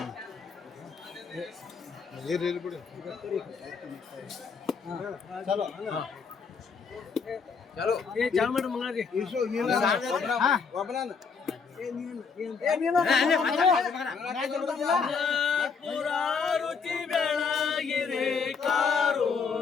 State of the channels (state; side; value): quieter; right; 5.5 dB